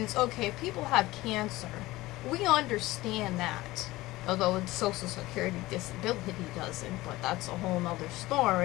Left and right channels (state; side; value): quieter; right; 18.6 dB